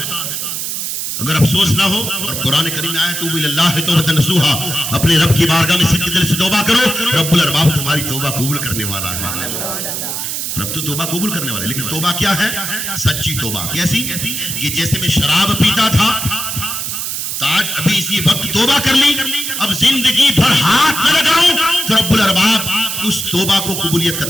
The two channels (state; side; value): noise; right; hiss, 3 dB below the sound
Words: अगर अफसोस ना हो, और कुरान करीम में आया तूबू इलल्लाह तौबतन नसूहा, अपने रब की बारगाह में सच्चे दिल से तौबा करो, रब्बुल अरबाब तुम्हारी तौबा कबूल करने वाला है। रब तो तौबा कबूल करने वाला है, लेकिन तौबा क्या है? सच्ची तौबा। कैसी? कि जैसे मैं शराब पीता था तो आज अभी इसी वक्त तौबा कर ली, अब जिंदगी भर हाथ न लगाऊं, तो रब्बुल अरबाब उस तौबा को कबूलियत का